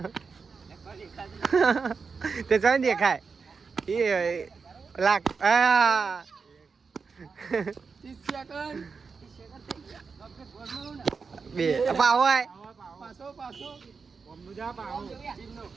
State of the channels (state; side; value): quieter; left; 5.1 dB